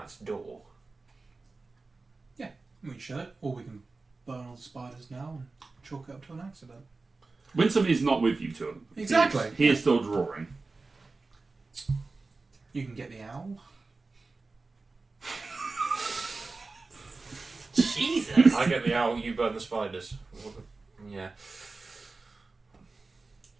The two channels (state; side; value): quieter; left; 3.7 dB